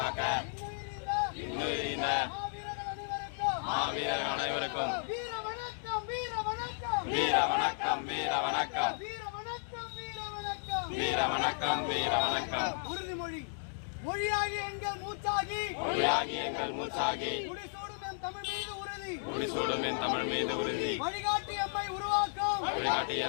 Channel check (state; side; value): silent; right; digital silence